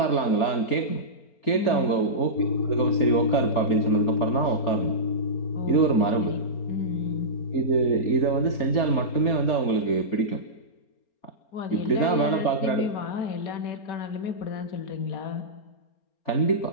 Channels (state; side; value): late; right; 4.3 ms